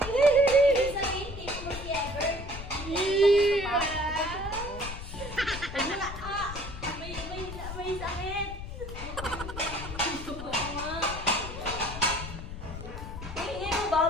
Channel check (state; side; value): noise; left; rumble, 9 dB below the sound